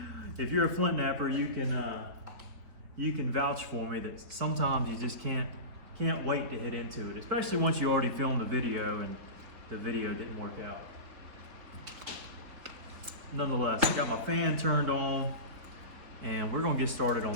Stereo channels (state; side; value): late; left; 4.5 ms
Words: if you're a flint napper, you can vouch for me that sometimes you just can't wait to hit into it, especially once you already filmed the video and the video didn't work out. Nonetheless, I got my fan turned on, and we're gonna get started